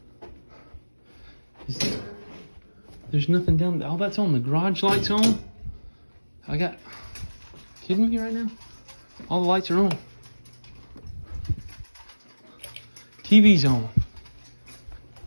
There's nothing down there. Oh, that's on. The garage lights on. Kidding me right now? All the lights are on. TV's on.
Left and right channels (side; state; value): both; inverted; correlation -1.00